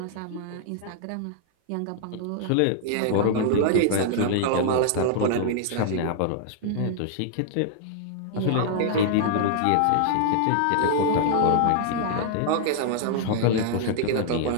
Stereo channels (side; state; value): both; different; correlation -0.01